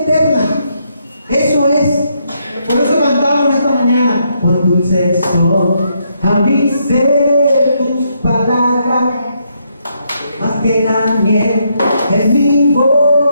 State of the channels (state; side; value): inverted; both; correlation -0.76